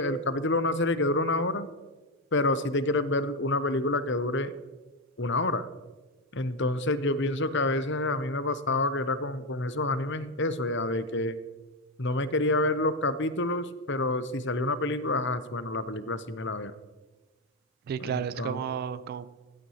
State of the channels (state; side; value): normal; both; correlation 0.08